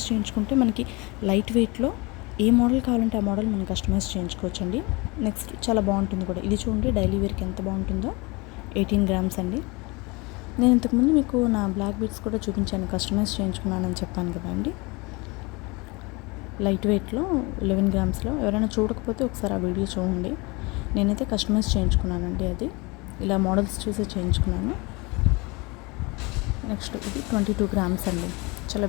చేయించుకుంటే మనకి లైట్ వెయిట్లో ఏ మోడల్ కావాలంటే ఆ మోడల్ మనం కస్టమైజ్ చేయించుకోవచ్చండి. నెక్స్ట్ చాలా బాగుంటుంది కూడా. ఇది చూడండి, డైలీ వేర్కి ఎంత బాగుంటుందో. 18 గ్రామ్స్ అండి. నేను ఇంతకుముందు మీకు నా బ్లాక్ బీడ్స్ కూడా చూపించాను, కస్టమైజ్ చేయించుకున్నానని చెప్పాను కదా అండి. లైట్ వెయిట్లో 11 గ్రామ్స్లో. ఎవరైనా చూడకపోతే ఒకసారి ఆ వీడియో చూడండి. నేనైతే కస్టమైజ్ చేయించుకున్నానండి. అది ఇలా మోడల్స్ చూసి చేయించుకున్నాను. నెక్స్ట్ ఇది 22 గ్రామ్స్ అండి. చాలా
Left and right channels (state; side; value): quieter; right; 26.3 dB